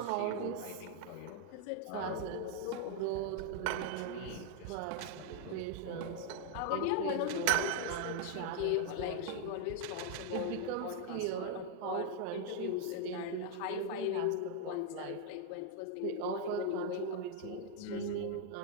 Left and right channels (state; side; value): different; both; correlation 0.00